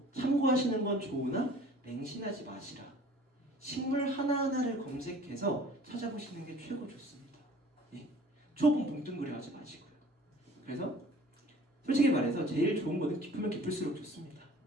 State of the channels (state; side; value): normal; both; correlation 0.49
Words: 참고하시는 건 좋으나 맹신하지 마시라. 식물 하나하나를 검색해서 찾아보시는 게 최고 좋습니다. 예. 초본 뭉뚱그려 하지 마시고요. 그래서 솔직히 말해서 제일 좋은 거는 깊으면 깊을수록 좋습니다.